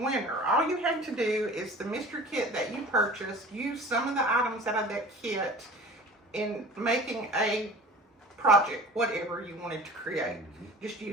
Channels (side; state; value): both; normal; correlation 0.42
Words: All you have to do is the mystery kit that you purchased, use some of the items out of that kit in making a project, whatever you wanted to create. Just